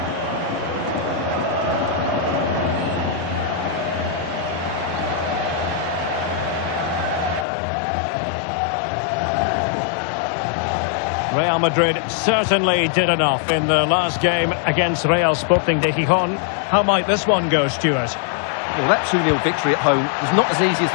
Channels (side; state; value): right; drops out; at 7.5 s